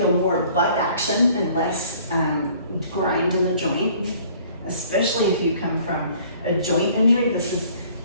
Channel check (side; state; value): both; inverted; correlation -0.55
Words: more butt action and less grind in the joint, especially if you come from a joint injury. This